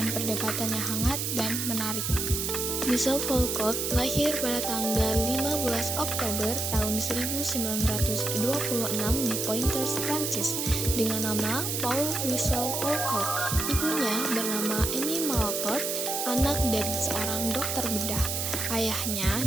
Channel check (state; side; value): noise; right; hiss, 1 dB below the sound